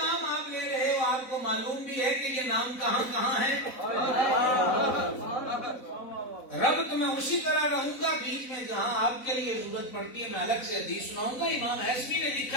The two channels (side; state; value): right; late; 4.0 ms